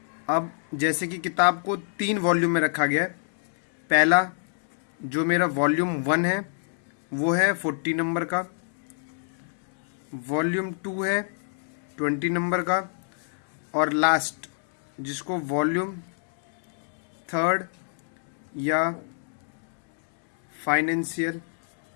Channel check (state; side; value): silent; right; 60 dB below the other